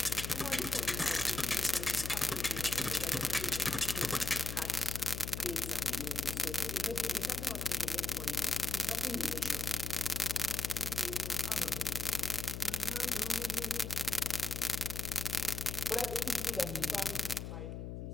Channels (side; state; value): left; noise; hum, 6 dB below the sound